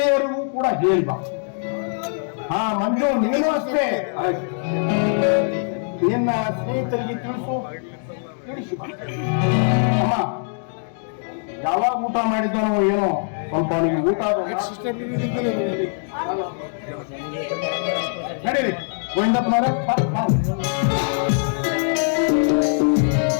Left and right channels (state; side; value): silent; right; digital silence